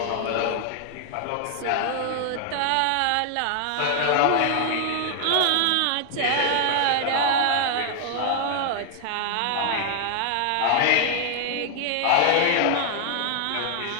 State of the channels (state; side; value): different; both; correlation 0.00